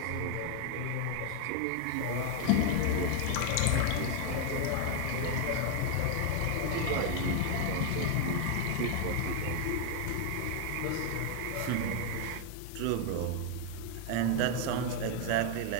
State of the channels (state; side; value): different; both; correlation 0.01